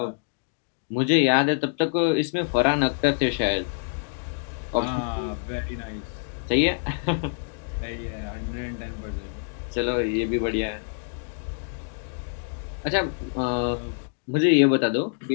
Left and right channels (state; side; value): silent; right; digital silence